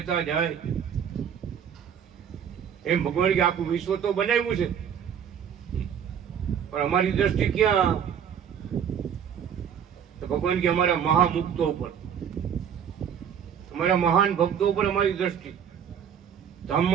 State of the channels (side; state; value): left; quieter; 8.2 dB